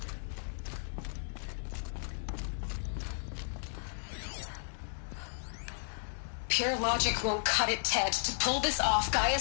Pure logic won't cut it, Ted. To pull this off,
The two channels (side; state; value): right; silent; digital silence